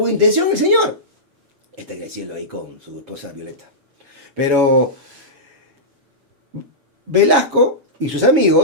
intención el señor. Está creciendo ahí con su esposa Violeta. Pero Velasco y sus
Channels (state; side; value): late; left; 7.2 ms